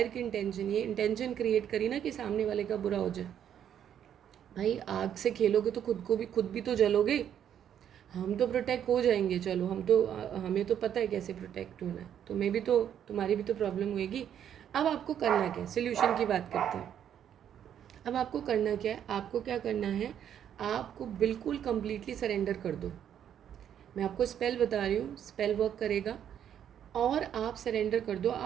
की इंटेंशन, ये इंटेंशन क्रिएट करी ना कि सामने वाले का बुरा हो जाए। भाई आग से खेलोगे तो खुद भी तो जलोगे। हम तो प्रोटेक्ट हो जाएंगे, चलो हमें तो पता है कैसे प्रोटेक्ट होना है, तुम्हारी भी तो प्रॉब्लम होएगी। अब आपको करना क्या है, सोल्यूशन की बात करते हैं। अब आपको करना क्या है, आपको क्या करना है, आपको बिल्कुल कंप्लीटली सरेंडर कर दो। मैं आपको स्पेल बता रही हूँ, स्पेल वर्क करेगा, और आप सरेंडर कर दो।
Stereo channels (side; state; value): left; quieter; 9.5 dB